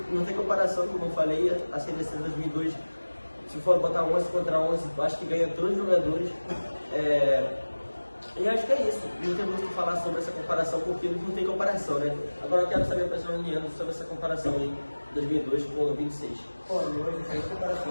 não tem comparação, como eu falei, a seleção de 2002, se for botar 11 contra 11, eu acho que ganha todos os jogadores. E acho que é isso, não tem muito o que falar sobre essa comparação, porque não tem comparação, né? Agora eu quero saber a opinião do Leandro sobre essa comparação aí, 2002 com 26. Pô, hoje, sem comparação,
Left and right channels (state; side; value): inverted; both; correlation -1.00